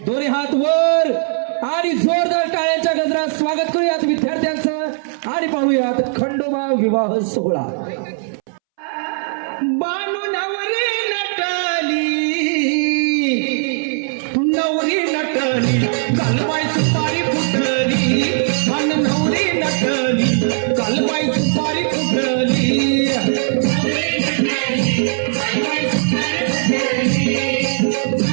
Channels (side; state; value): left; silent; 67 dB below the other